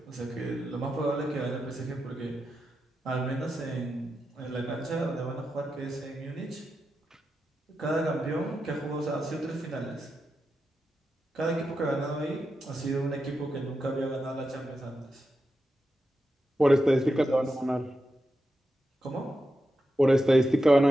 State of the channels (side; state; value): both; normal; correlation 0.88